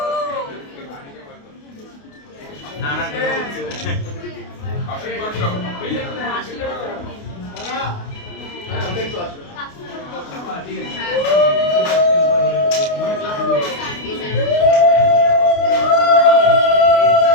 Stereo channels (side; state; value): right; late; 28 ms